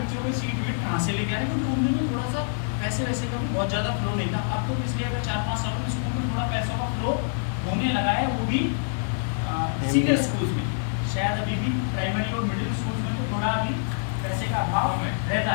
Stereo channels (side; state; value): right; silent; 61 dB below the other